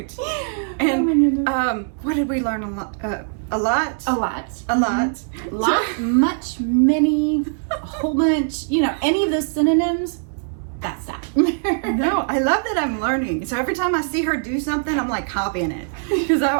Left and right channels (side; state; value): left; silent; digital silence